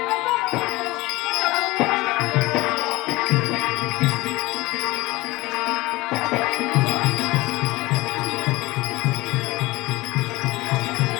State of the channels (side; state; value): right; quieter; 20.7 dB